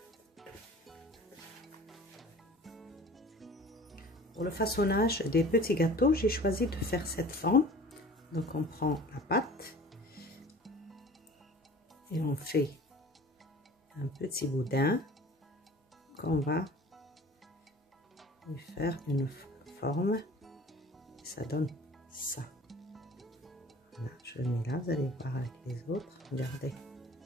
Pour le façonnage des petits gâteaux, j'ai choisi de faire cette forme. Donc, on prend la pâte et on fait un petit boudin qu'on va lui faire une forme. Et ça donne ça. Voilà, je le mets là, vous allez voir avec les autres. Regardez,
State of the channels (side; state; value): both; normal; correlation 0.44